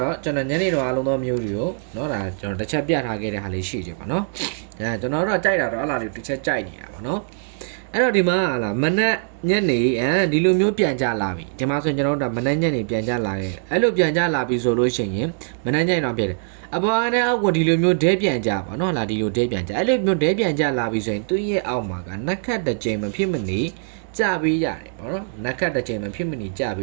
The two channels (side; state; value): left; silent; digital silence